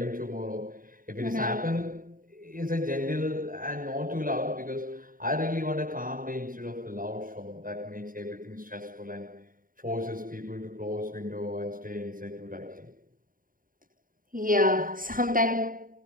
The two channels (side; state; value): left; late; 0.40 ms